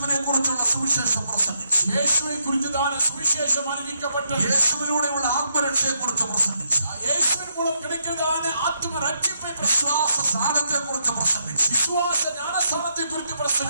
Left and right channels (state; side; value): inverted; both; correlation -0.77